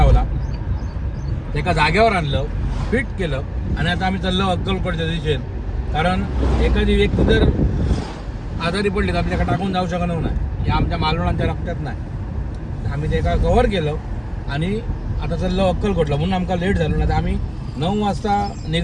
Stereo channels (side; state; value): both; identical; correlation 1.00